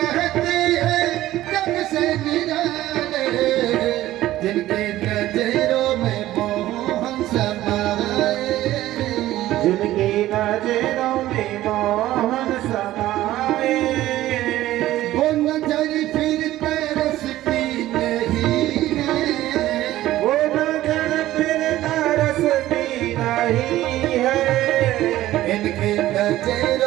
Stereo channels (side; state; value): left; quieter; 14.9 dB